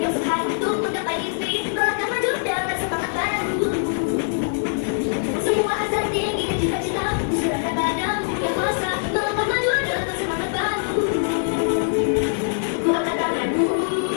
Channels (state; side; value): silent; right; 56 dB below the other